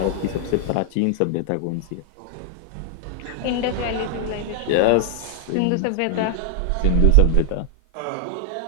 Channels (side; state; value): both; different; correlation 0.00